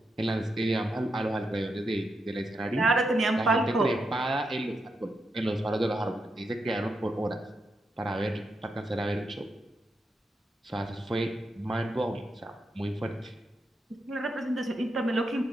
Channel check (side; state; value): both; normal; correlation 0.84